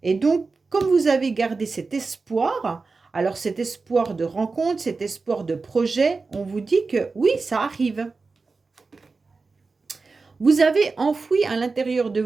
Et donc, comme vous avez gardé cet espoir, alors cet espoir de rencontre, cet espoir de projet, on vous dit que oui, ça arrive. Vous avez enfoui à l'intérieur de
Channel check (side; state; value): left; quieter; 4.1 dB